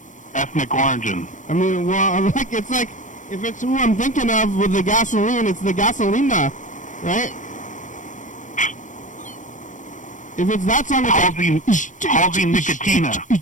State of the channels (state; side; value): late; right; 0.37 ms